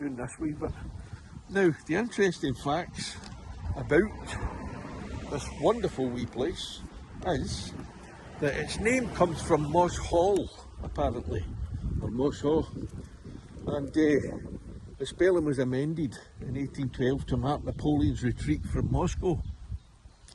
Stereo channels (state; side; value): identical; both; correlation 1.00